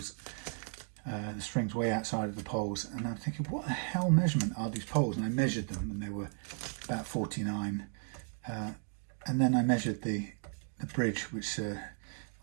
the strings way outside of the poles. And I'm thinking, what the hell measurement are these poles? And I measured them, and they were about 49. And then I measured the bridge, which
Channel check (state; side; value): silent; left; 54 dB below the other